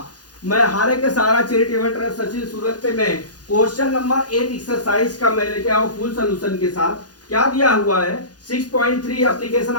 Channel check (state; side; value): late; right; 0.69 ms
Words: मैं हारे के सारा चैरिटेबल सचिन सूरत पे मैं क्वेश्चन नंबर 8 एक्सरसाइज का मैं लेके आया फुल सोल्यूशन के साथ। क्या दिया हुआ है 6.3 एप्लीकेशन